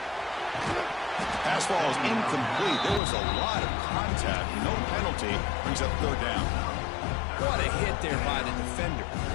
Pass ball is incomplete. There was a lot of contact. No penalty. Brings up third down. What a hit there by the defender.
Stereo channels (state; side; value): drops out; right; at 3.0 s